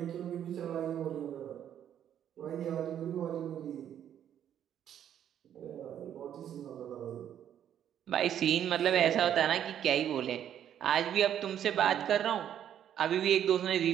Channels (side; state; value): left; quieter; 10.0 dB